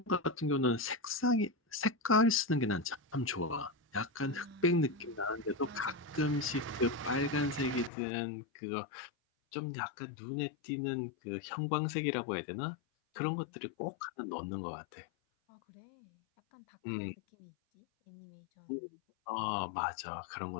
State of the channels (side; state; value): right; drops out; at 7.9 s